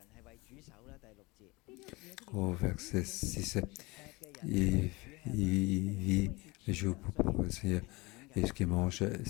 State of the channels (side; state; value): right; quieter; 24.0 dB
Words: Au verset 6, il vit les jours pour le Seigneur. Et ce qu'il mange,